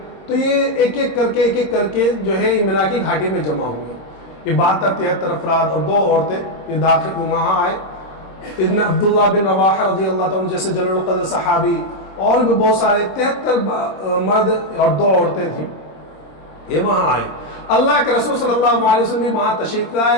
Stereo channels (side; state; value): right; late; 26 ms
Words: تو یہ ایک ایک کر کے جو ہے یہ مینا کی گھاٹی میں جمع ہوئے. یہ 72-73 افراد اور 2 عورتیں یہ داخل وہاں آئے. ابن عبداللہ بن رواحہ رضی اللہ تعالیٰ جیسے جلیل القدر صحابی, اور بھی بہت سارے 73 مرد اور 2 عورتیں تھیں, یہ وہاں آئے. اللہ کے رسول صلی اللہ علیہ وسلم بھی وہاں تشریف